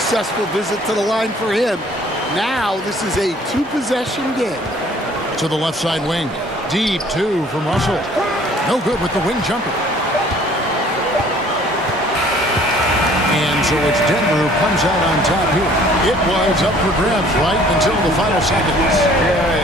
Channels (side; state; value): both; normal; correlation 0.55